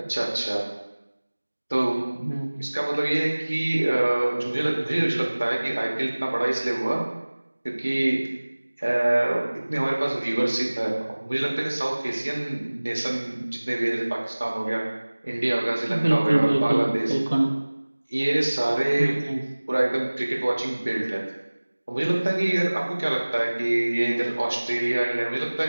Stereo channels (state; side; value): inverted; both; correlation -1.00